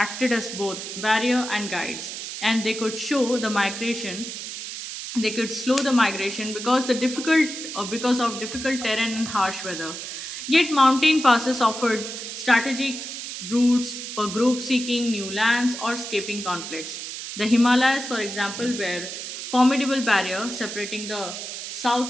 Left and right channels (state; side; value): noise; right; hiss, 8 dB below the sound